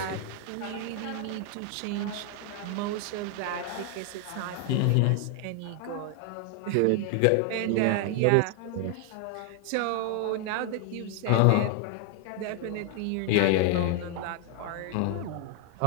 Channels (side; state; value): both; different; correlation 0.00